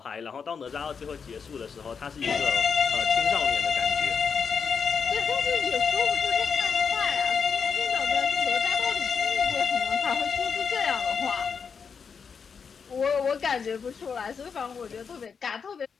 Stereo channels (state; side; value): quieter; right; 6.1 dB